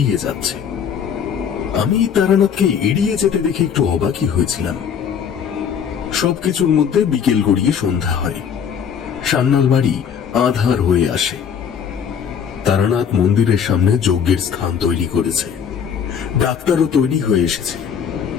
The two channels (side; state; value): right; quieter; 7.6 dB